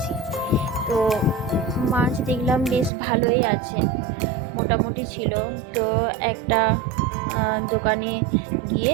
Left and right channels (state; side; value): drops out; left; at 2.9 s